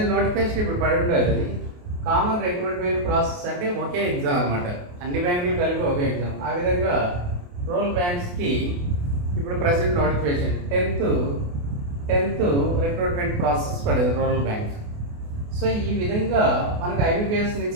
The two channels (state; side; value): late; left; 28 ms